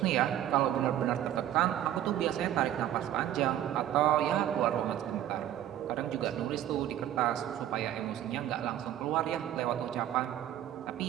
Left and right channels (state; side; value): quieter; left; 11.9 dB